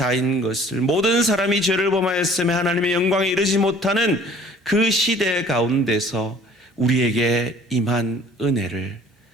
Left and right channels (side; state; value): both; normal; correlation 0.52